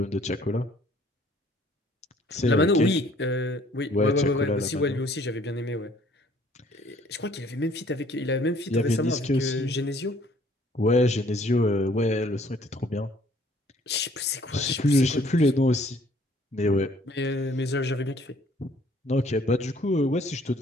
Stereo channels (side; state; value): both; normal; correlation 0.59